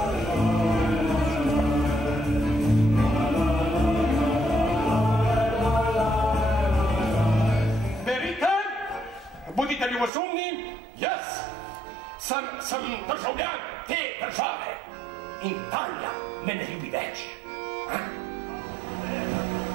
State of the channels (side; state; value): left; drops out; at 10.1 s